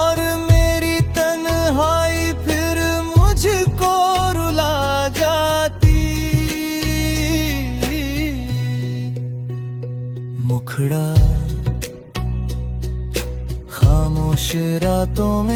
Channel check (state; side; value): identical; both; correlation 1.00